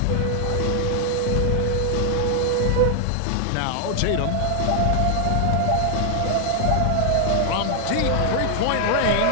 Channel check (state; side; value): different; both; correlation 0.00